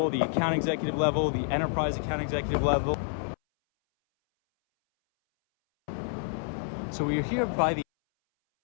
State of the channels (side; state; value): right; silent; 59 dB below the other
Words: the account executive level, the enterprise account executive level. So we are here by the